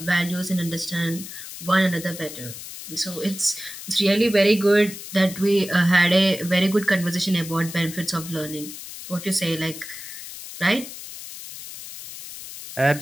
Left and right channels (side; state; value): left; noise; hiss, 12 dB below the sound